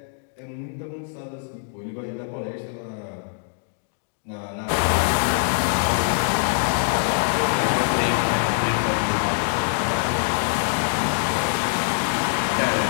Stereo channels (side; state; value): right; silent; digital silence